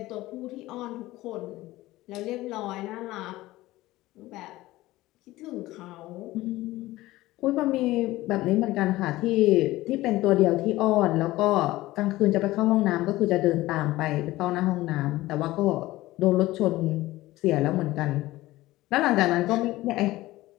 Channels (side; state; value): right; quieter; 17.6 dB